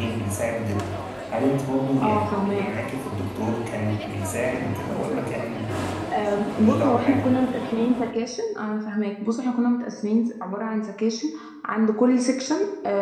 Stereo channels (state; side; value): identical; both; correlation 1.00